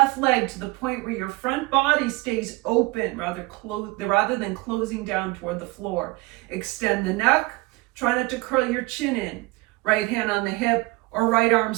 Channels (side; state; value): left; quieter; 23.3 dB